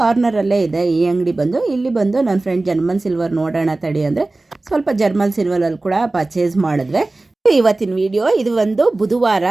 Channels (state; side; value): quieter; left; 3.0 dB